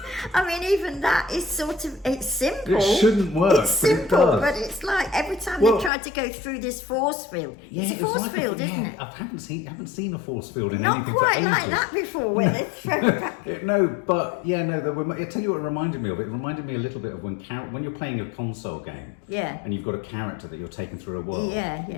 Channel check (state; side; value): drops out; right; at 5.9 s